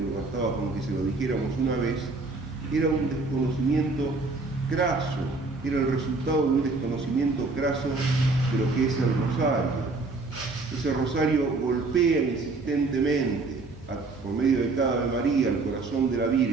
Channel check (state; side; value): quieter; left; 3.6 dB